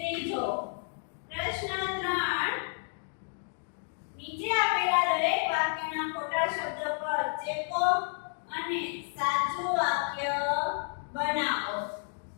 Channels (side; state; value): right; silent; 56 dB below the other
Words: પ્રશ્ન 3, નીચે આપેલા દરેક વાક્યના ખોટા શબ્દ પર ચેકો અને સાચું વાક્ય બનાવો.